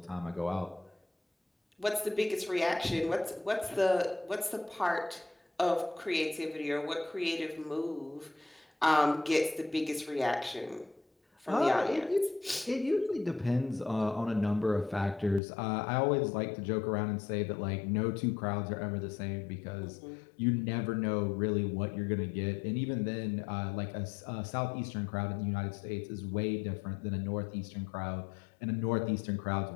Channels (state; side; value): drops out; right; at 15.4 s